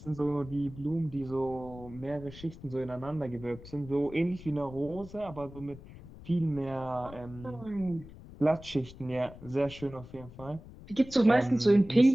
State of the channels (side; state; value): left; noise; rumble, 17 dB below the sound